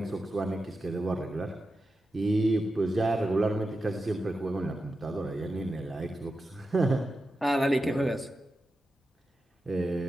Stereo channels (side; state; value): both; normal; correlation 0.91